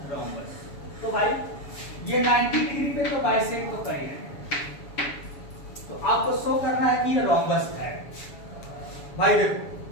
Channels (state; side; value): late; right; 7.1 ms